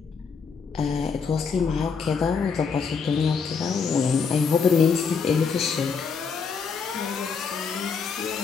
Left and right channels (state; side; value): quieter; right; 5.6 dB